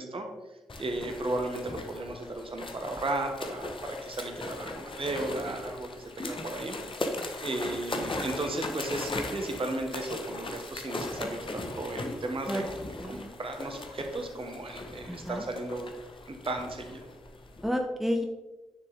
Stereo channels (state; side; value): normal; both; correlation 0.70